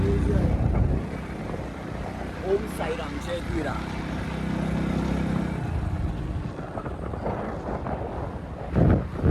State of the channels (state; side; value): identical; both; correlation 1.00